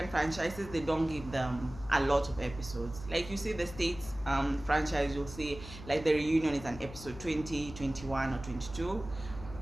franchises, they don't give them a lot of episodes. Like you see the States franchise, you'll see like the reunion is an episode 20, 21, or 22.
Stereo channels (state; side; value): noise; left; hum, 14 dB below the sound